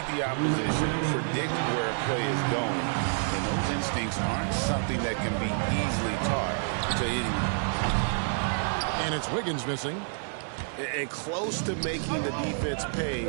the opposition, predict where a play is going, and those instincts aren't something that can be easily taught to anyone. And it's Wiggins missing. And close to making the defense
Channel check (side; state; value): left; silent; 59 dB below the other